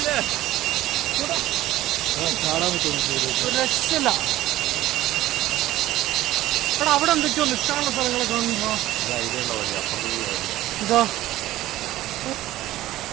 രക്ഷയില്ല. എടാ അവിടെ എന്തൊക്കെയോ നിൽക്കാനുള്ള സ്ഥലങ്ങളൊക്കെ കാണുമ്പോ ഇതോ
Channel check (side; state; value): left; quieter; 15.5 dB